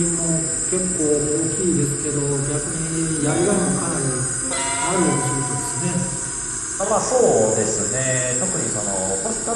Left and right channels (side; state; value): both; identical; correlation 1.00